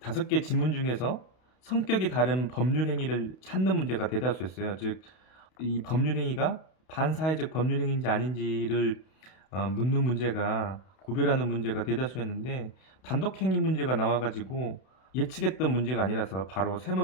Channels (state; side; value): late; right; 32 ms